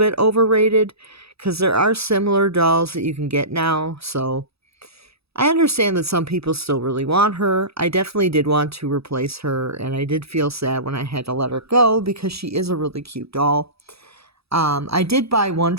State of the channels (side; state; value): left; late; 0.77 ms